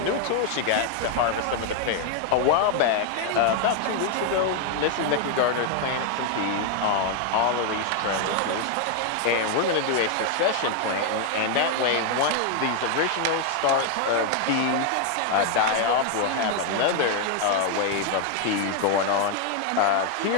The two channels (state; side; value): different; both; correlation 0.01